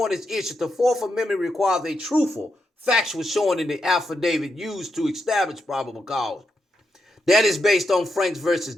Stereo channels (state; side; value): normal; both; correlation 0.84